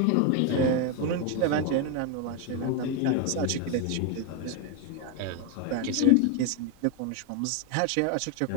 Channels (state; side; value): different; both; correlation 0.02